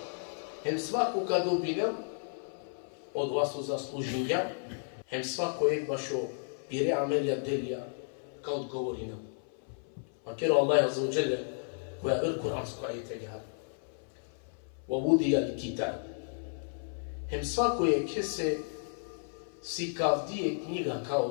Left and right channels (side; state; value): right; silent; 55 dB below the other